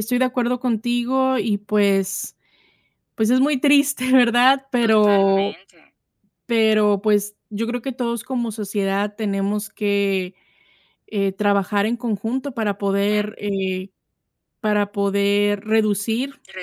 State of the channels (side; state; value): both; identical; correlation 1.00